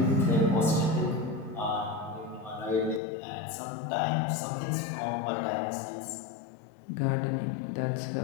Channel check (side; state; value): right; drops out; at 3.0 s